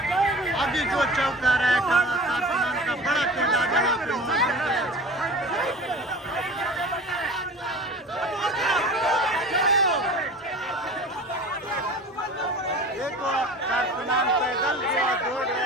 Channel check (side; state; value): both; normal; correlation 0.38